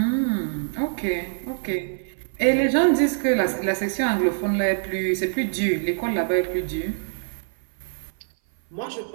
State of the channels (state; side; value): silent; left; 58 dB below the other